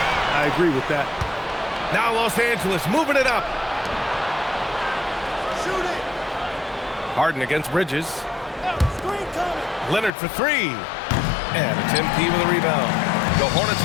I agree with that. Now Los Angeles moving it up. Shoot it. Harden against Bridges. Leonard for three. And it's MP with a rebound. The Hornets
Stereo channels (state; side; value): drops out; right; at 10.1 s